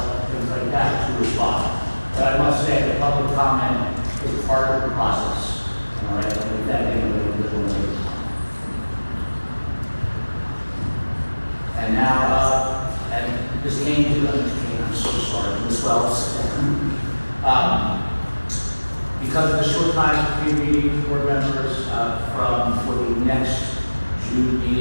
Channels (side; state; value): both; inverted; correlation -1.00